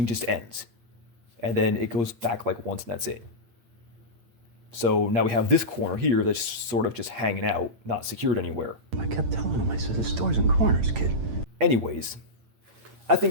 just ends, and then it goes back like once, and that's it. So now we have this corner here that's sort of just hanging out, not secured anywhere. I kept telling him, I said, there's doors and corners, kid. Anyways, I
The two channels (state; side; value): late; left; 8.8 ms